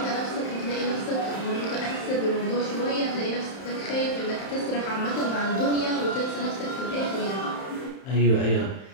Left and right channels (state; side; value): late; right; 31 ms